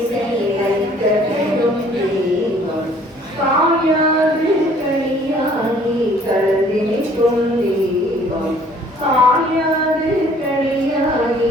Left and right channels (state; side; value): normal; both; correlation 0.57